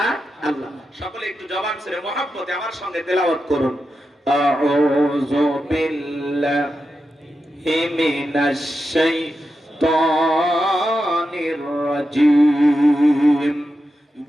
সকলে একটু জবান ছেড়ে মহব্বতে আমার সঙ্গে তেলাওয়াত করুন। আউযু বিল্লাহি মিনাশ শাইতানির রাজীম।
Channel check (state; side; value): normal; both; correlation 0.89